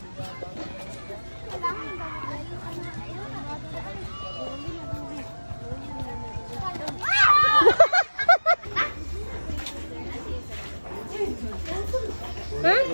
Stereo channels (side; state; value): both; inverted; correlation -1.00